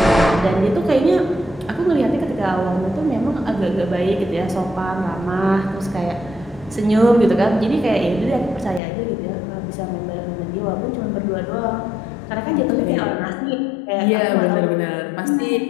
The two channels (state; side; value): drops out; right; at 8.8 s